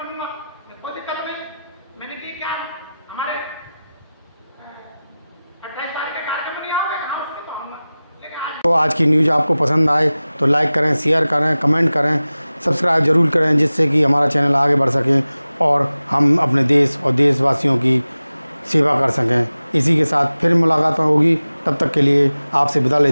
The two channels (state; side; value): inverted; both; correlation -0.97